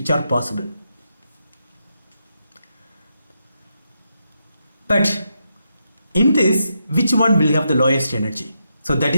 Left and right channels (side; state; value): both; inverted; correlation -0.83